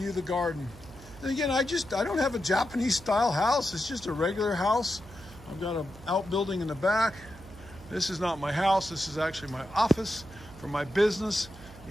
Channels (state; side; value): noise; right; hum, 19 dB below the sound